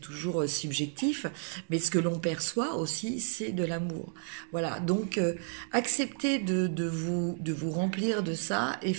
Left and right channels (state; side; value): silent; left; 57 dB below the other